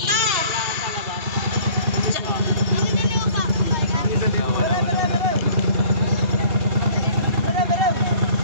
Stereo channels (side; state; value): left; late; 2.8 ms